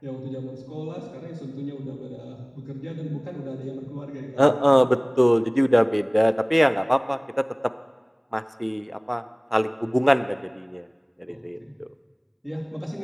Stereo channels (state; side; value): identical; both; correlation 1.00